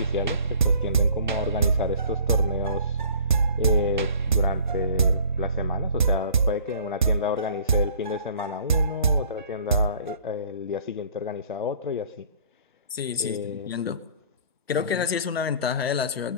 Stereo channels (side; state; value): both; inverted; correlation -0.50